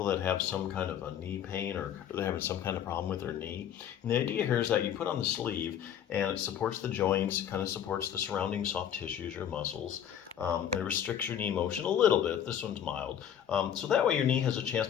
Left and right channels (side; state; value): right; quieter; 9.5 dB